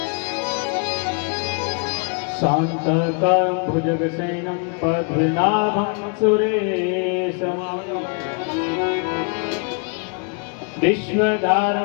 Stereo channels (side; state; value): right; quieter; 38.3 dB